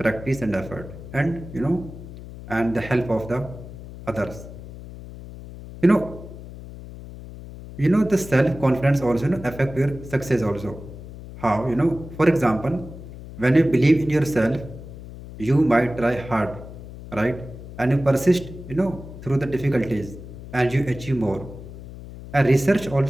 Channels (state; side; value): noise; left; hum, 14 dB below the sound